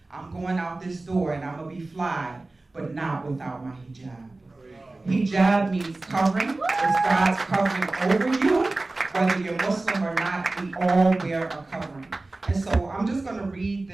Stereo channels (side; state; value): left; quieter; 3.1 dB